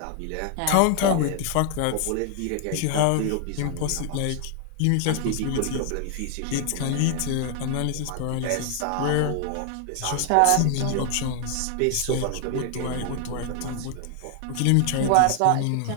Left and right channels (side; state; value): both; different; correlation 0.00